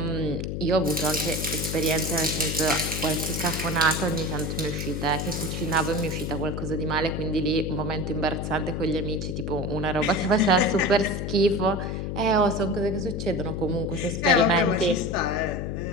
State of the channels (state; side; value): noise; left; hum, 3 dB below the sound